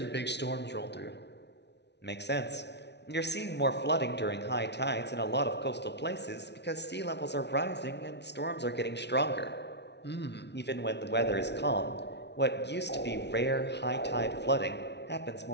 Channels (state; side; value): late; right; 0.50 ms